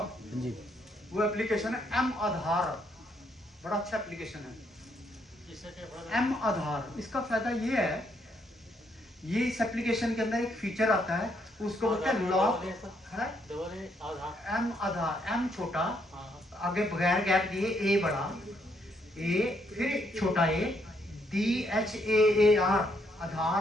जी। वो एप्लीकेशन है एम आधार, बड़ा अच्छा एप्लीकेशन है एम आधार। इसका फायदा ये है, ये इस एप्लीकेशन के अंदर एक फीचर आता है, उसको बोलते हैं लॉक है, एम आधार, एम छोटा, आगे बगैर गैप दिए ए बड़ा, ए फिर छोटा ए, DHAAR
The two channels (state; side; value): normal; both; correlation 0.73